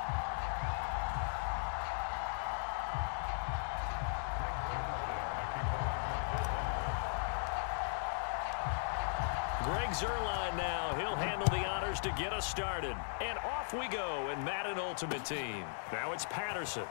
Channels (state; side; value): silent; right; digital silence